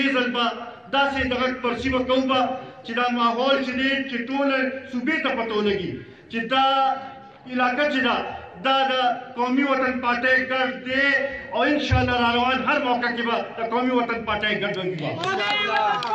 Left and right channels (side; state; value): both; identical; correlation 1.00